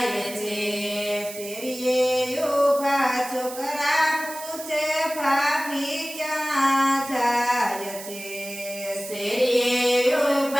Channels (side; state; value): right; noise; hiss, 12 dB below the sound